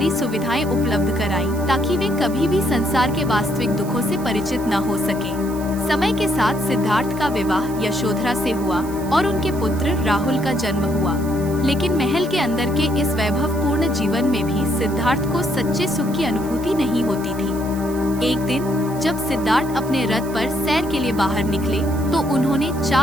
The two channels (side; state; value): right; noise; hiss, 17 dB below the sound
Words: सुविधाएं उपलब्ध कराई, ताकि वे कभी भी संसार के वास्तविक दुखों से परिचित न हो सके। समय के साथ सिद्धार्थ का विवाह यशोधरा से हुआ और उनके पुत्र राहुल का जन्म हुआ। लेकिन महल के अंदर के इस वैभवपूर्ण जीवन में भी सिद्धार्थ को सच्चे सुख की अनुभूति नहीं होती थी। एक दिन जब सिद्धार्थ अपने रथ पर सैर के लिए बाहर निकले तो उन्होंने